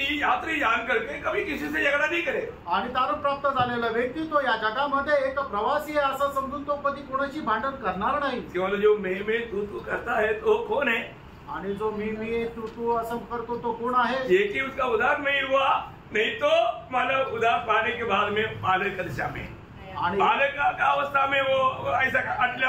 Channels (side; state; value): both; identical; correlation 1.00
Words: यात्री जान करके कभी किसी से झगड़ा नहीं करे. आणि तारण प्राप्त झालेला व्यक्ती तो या जगामध्ये एक प्रवासी आहे असं समजून तो कधी कोणाशी भांडण करणार नाही. केवळ जो मैं तू करता है तो कौन है? आणि जो मी तू असं करतो तो कोण आहे? ये कि उसका उद्धार नहीं हुआ, नहीं तो मतलब उद्धार पाने के बाद में बालक की दशा में आणि बालक का अवस्था में वो ऐसा